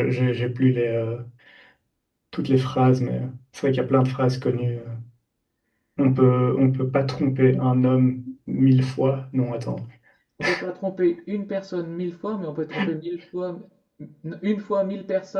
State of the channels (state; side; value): identical; both; correlation 1.00